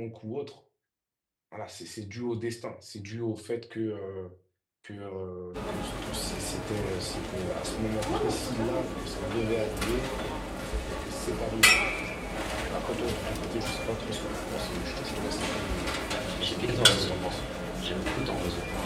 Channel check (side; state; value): both; identical; correlation 1.00